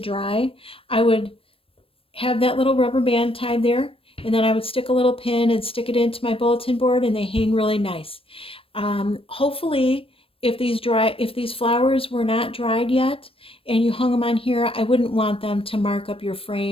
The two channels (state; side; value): late; right; 0.27 ms